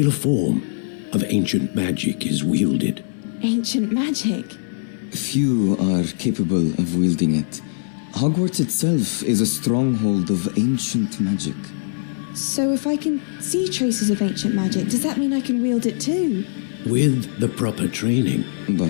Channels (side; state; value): right; silent; 65 dB below the other